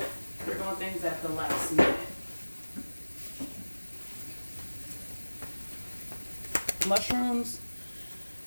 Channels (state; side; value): inverted; both; correlation -1.00